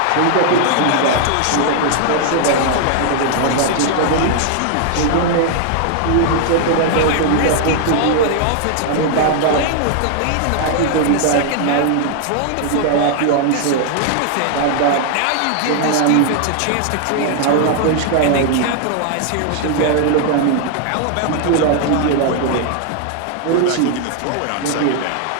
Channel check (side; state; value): both; different; correlation 0.00